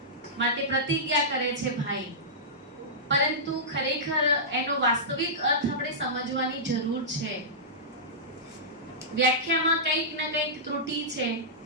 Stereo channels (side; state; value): both; normal; correlation -0.15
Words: માટે પ્રતિજ્ઞા કરે છે ભાઈ. પરંતુ ખરેખર એનો વાસ્તવિક અર્થ આપણે સમજવાની જરૂર છે. વ્યાખ્યામાં કંઈક ને કંઈક ત્રુટિ છે